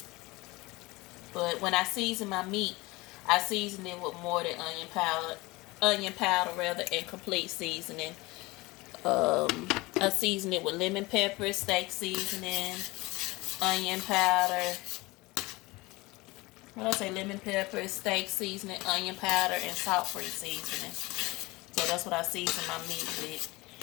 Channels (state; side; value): quieter; right; 22.4 dB